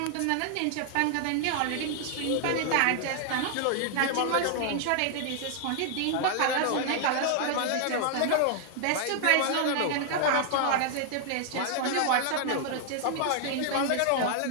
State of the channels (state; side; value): different; both; correlation 0.00